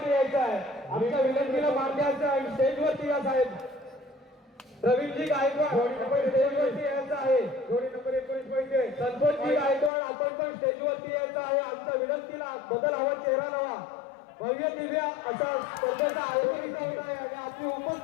यायचं आहे आमच्या विनंतीला मान द्यायचं आहे स्टेजवरती या साहेब रवींद्रजी गायकवाड आपण स्टेजवरती यायचं आहे जोडी नंबर 19 पैसे संतोषजी गायकवाड आपण पण स्टेजवरती यायचं आहे आमच्या विनंतीला बदल हवा चेहरा लावा भव्य दिव्य असा स्पर्धेचा आयोजन इथं होत आहे आणि आपली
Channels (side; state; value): right; drops out; at 9.9 s